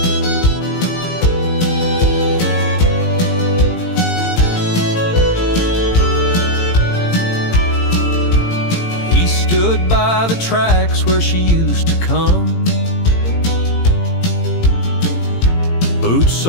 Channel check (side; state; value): right; late; 18 ms